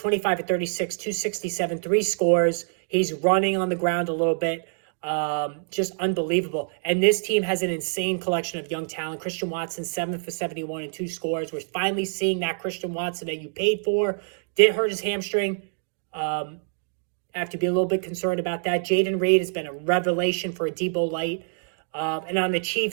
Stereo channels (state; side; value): silent; left; digital silence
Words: of 36, 267, 3 scores. He's running on the ground a little bit. Just unbelievable. And this team has an insane collection of young talent. Christian Watson, 7 for 71 and 2 scores. We're finally seeing that Christian Watson that you paid for. Did hurt his hamstring. I have to be a little bit concerned about that. Jaden Reed has been a revelation for a Debo Light. And on the